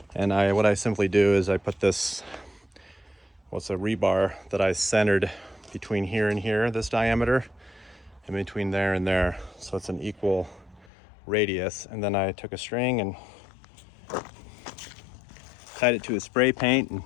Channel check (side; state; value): right; drops out; at 10.9 s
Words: And what I simply do is I put this, what's a rebar that I centered between here and here, this diameter, and between there and there, so it's an equal radius. And then I took a string and tied it to a spray paint and